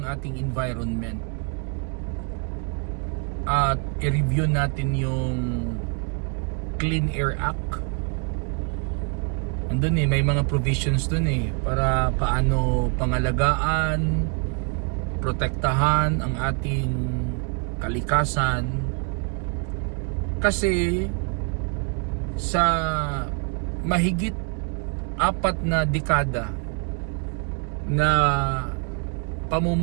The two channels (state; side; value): quieter; left; 37.2 dB